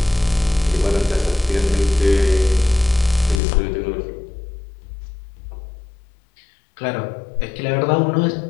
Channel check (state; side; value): drops out; right; at 3.4 s